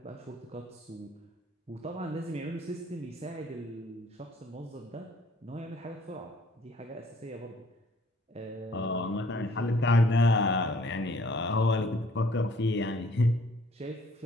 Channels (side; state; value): both; normal; correlation 0.59